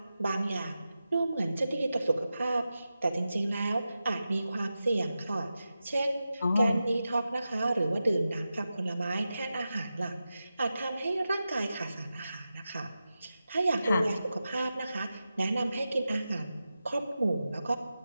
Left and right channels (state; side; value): inverted; both; correlation -0.91